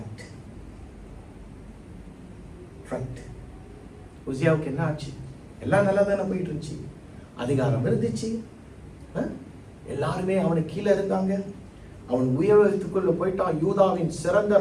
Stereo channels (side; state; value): both; identical; correlation 1.00